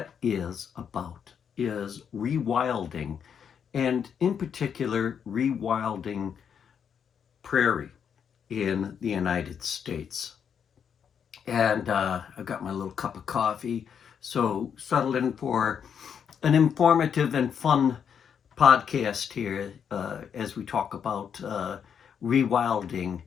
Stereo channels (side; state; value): right; quieter; 7.6 dB